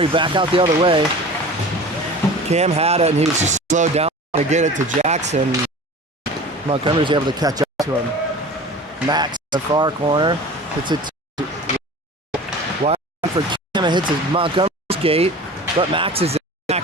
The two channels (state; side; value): normal; both; correlation 0.38